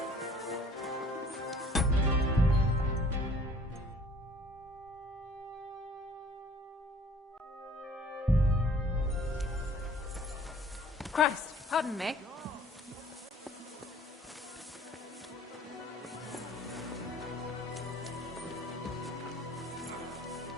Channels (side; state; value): both; normal; correlation 0.54